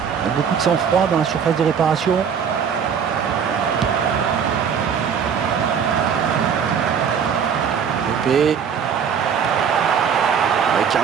Beaucoup de sang-froid dans la surface de réparation. Pépé.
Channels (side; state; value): left; quieter; 7.2 dB